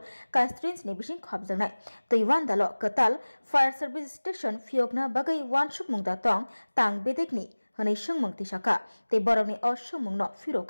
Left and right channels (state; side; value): inverted; both; correlation -1.00